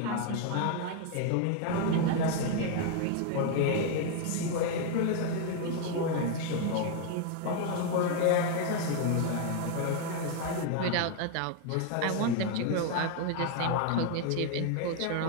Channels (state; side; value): different; both; correlation 0.00